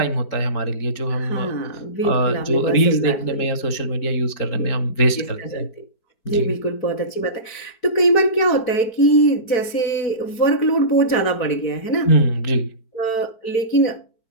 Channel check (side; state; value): right; late; 4.5 ms